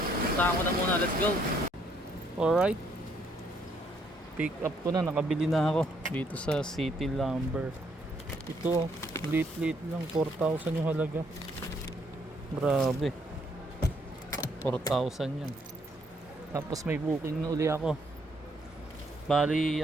ko na muna, let's go. Alright, pick up ko na, nakabili na ako dito sa City Lumber. Ito, lit lang, 4,000 yung halaga. Grabe, 4,000 yan. Tapos may booking na uli ako. Bali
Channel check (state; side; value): normal; both; correlation 0.69